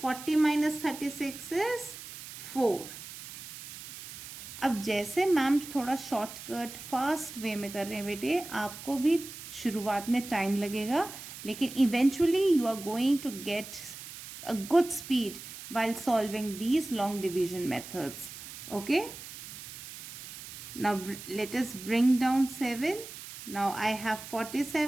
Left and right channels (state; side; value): noise; right; hiss, 13 dB below the sound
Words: 40 minus 36 is 4. अब जैसे मैम थोड़ा शॉर्टकट फास्ट वे में कर रहे हैं बेटे, आपको भी शुरुआत में टाइम लगेगा, लेकिन eventually you are going to get a good speed while solving these long division methods. Okay, now let us bring down 7. Now I have